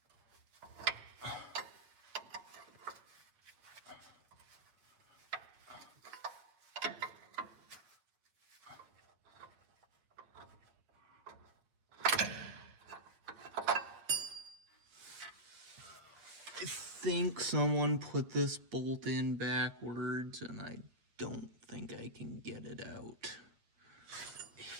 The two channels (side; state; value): left; late; 8.8 ms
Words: I think someone put this bolt in backwards, and I don't think I can get it out.